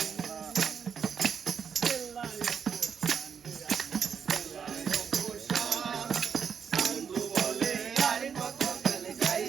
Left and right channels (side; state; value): left; quieter; 6.9 dB